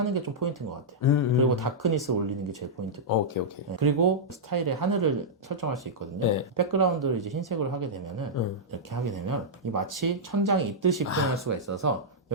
게 좀 포인트인 것 같아요. 그리고 다크니스 올리는 게 제일 포인트고. 오케이. 네. 그리고 스타일의 하늘을 설정할 수 있거든요. 백그라운드를 이제 흰색으로 하게 되면은 이렇게 하게 되면 이 마치 천장이 있듯이 표현할 수가 있어서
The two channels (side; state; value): both; normal; correlation -0.09